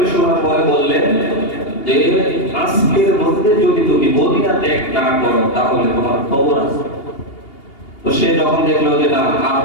শোনার পরে বললেন যে আজকের মধ্যে যদি তুমি মদিনা ত্যাগ না করো তাহলে তোমার খবর আছে। তো সে যখন দেখলো যে না আর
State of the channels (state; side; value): late; right; 2.8 ms